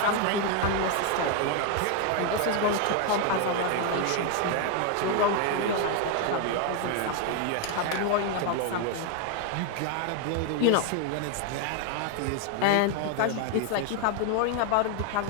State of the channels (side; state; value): both; different; correlation 0.01